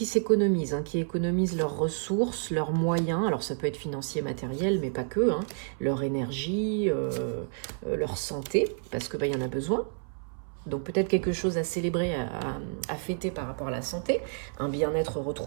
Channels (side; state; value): left; silent; 58 dB below the other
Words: s'économisent, hein, qui économisent leurs ressources, leurs moyens. Alors ça peut être financier, matériel, mais pas que, hein. Leur énergie, leur santé, parce que bah, y en a besoin. Donc peut-être quelque chose à célébrer, à fêter par rapport à la santé, un bien-être